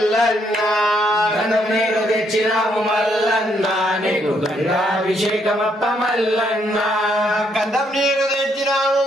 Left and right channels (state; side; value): normal; both; correlation 0.73